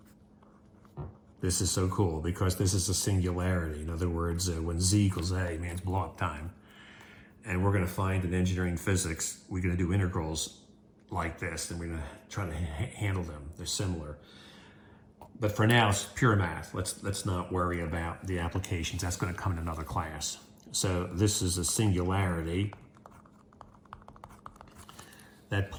This is so cool because this is a singularity. In other words, when z equals a means blow up time. And we're going to find in engineering physics, we're going to do integrals like this, and we're going to try to handle them. They're similar. But for now, it's pure math. Let's not worry about the applications. That's going to come in another class. So this is a singularity. That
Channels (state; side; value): identical; both; correlation 1.00